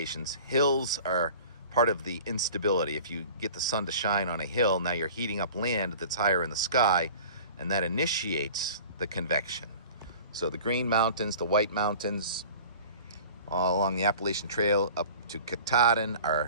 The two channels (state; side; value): inverted; both; correlation -0.43